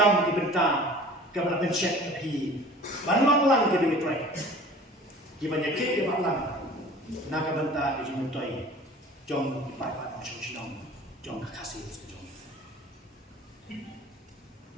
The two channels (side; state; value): both; normal; correlation 0.44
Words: di bentang, kepada pencet api, banyak lang jadi mitrai, gimana kek dia malang, nak bentang di jumutoi, jom dipakai macam sinong, jom kasih sejong.